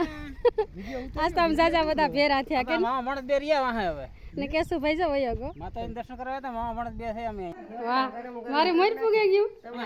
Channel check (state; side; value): identical; both; correlation 1.00